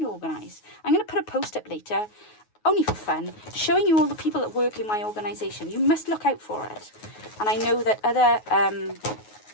to organise. I'm going to put a post up later, only for fun, showing you all the people that work in my organisation. You must look out for it. And I know that other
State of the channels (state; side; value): late; right; 9.4 ms